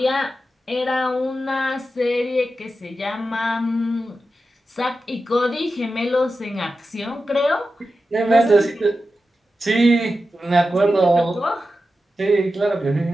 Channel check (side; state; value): both; normal; correlation 0.91